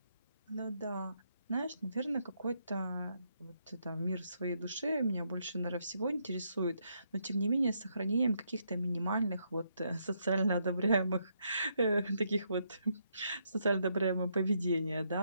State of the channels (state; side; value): inverted; both; correlation -0.77